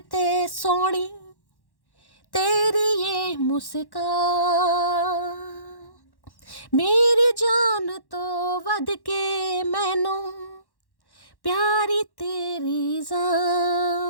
ते सोनी तेरी ये मुस्कान, मेरी जान तो वध के मैनू प्यारी तेरी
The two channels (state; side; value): late; right; 1.1 ms